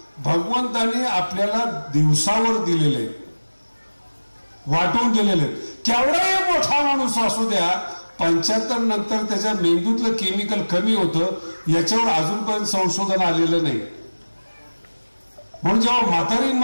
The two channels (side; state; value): both; inverted; correlation -1.00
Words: भगवंताने आपल्याला दिवसावर दिलेले, वाटून दिलेले. केवढाही मोठा माणूस असू द्या, 75 नंतर त्याच्या मेंदूतलं केमिकल कमी होतं, याच्यावर अजूनपर्यंत संशोधन आलेलं नाही. म्हणून जेव्हा म्हातारी